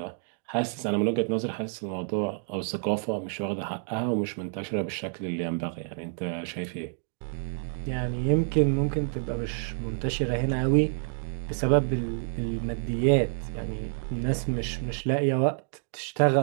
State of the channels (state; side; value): silent; left; digital silence